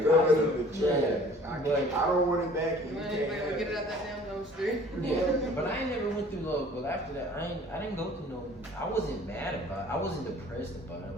Throw it in the trash. But- I don't want it back, and you Man, can't like, have get it it. out that damn dumpster. Yeah, but I ain't never went through love. But after that, I didn't go through no. I wasn't mad about it. I wasn't depressed about it.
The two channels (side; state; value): both; normal; correlation 0.51